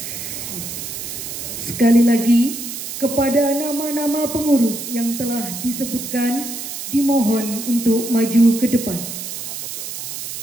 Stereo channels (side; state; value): right; noise; hiss, 7 dB below the sound